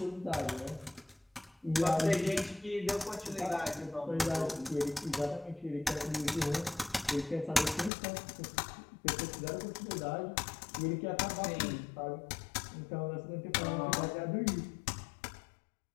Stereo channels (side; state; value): right; drops out; at 7.9 s